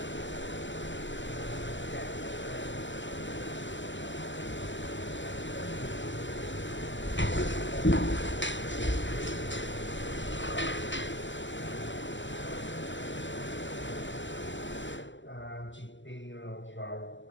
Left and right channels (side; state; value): right; late; 0.54 ms